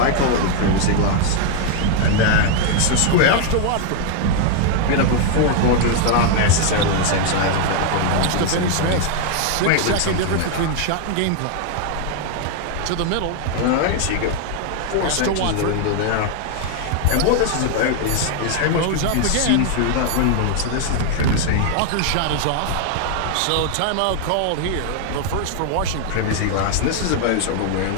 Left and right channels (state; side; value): different; both; correlation 0.00